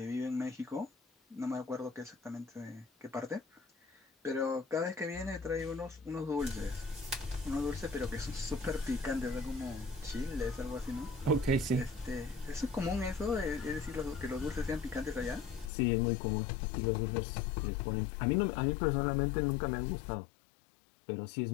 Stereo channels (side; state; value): right; drops out; at 15.7 s